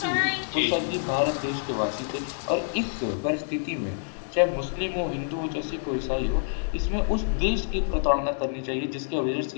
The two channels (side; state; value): right; silent; digital silence